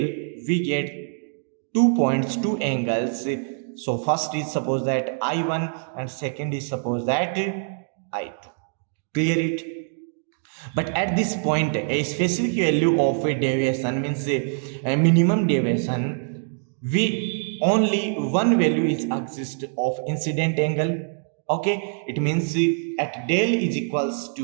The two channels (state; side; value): silent; left; 62 dB below the other